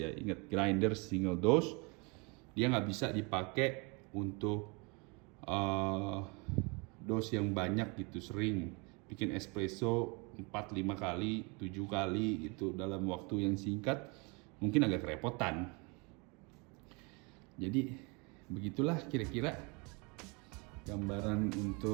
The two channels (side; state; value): left; quieter; 30.2 dB